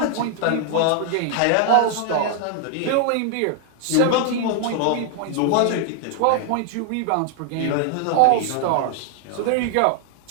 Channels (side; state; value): both; different; correlation 0.00